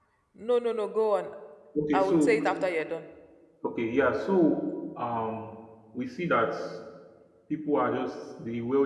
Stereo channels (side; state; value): both; identical; correlation 1.00